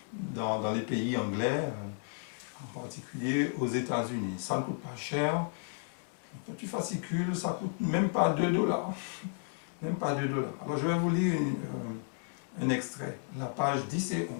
dans les pays anglais, en particulier aux États-Unis. Ça ne coûte pas cher. Un petit fascicule, ça ne coûte même pas 2 dollars. Même pas 2 dollars. Alors je vais vous lire un extrait, la page 10 et 11.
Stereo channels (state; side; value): silent; right; 56 dB below the other